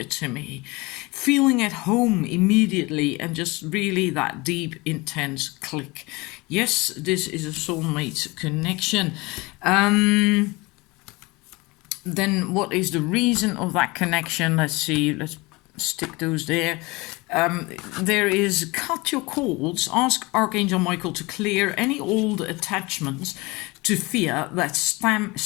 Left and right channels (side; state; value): right; quieter; 24.0 dB